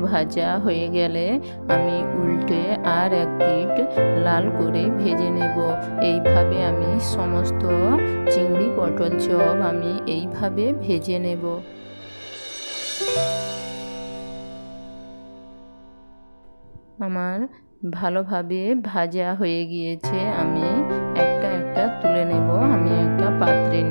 ভাজা হয়ে গেলে আমি উল্টে আর এক পিঠ লাল করে ভেজে নেব। এইভাবে আমি সমস্ত চিংড়ি পটল চপ আমি এইভাবে ভেজে নেব। আমার ভালোভাবে ভাজা হয়ে গিয়েছে। আমি একটা একটা তুলে নেব। আমি একটা পাত্রে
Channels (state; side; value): inverted; both; correlation -1.00